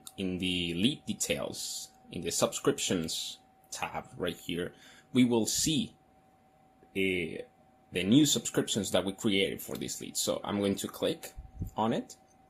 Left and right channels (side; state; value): both; identical; correlation 1.00